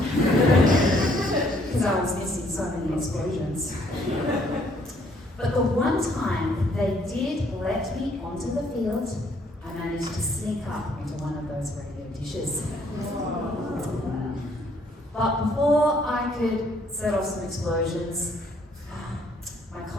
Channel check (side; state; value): both; normal; correlation 0.66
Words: because I was missing so many explosions. But the one time they did let me onto the field, I managed to sneak up onto one of those radio dishes. But before I could set off some explosions, my